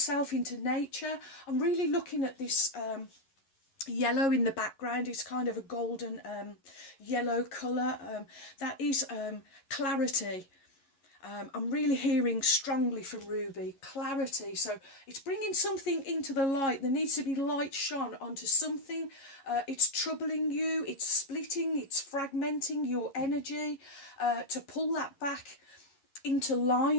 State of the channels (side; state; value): right; late; 11 ms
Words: into nature. I'm really looking at this yellow in the background. It's kind of a golden yellow colour. That is clarity. I'm really hearing strongly from Ruby, clarity. So it's bringing something into the light. There needs to be light shone onto something. It's troubling you, it's splitting, it's fragmenting your energy, to pull that back into